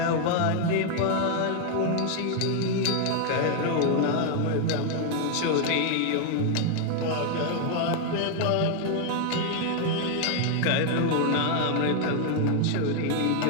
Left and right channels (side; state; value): both; different; correlation 0.00